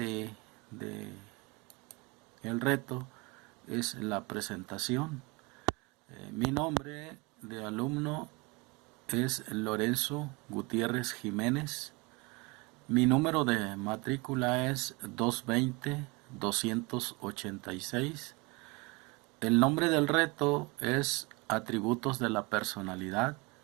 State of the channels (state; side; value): quieter; left; 26.1 dB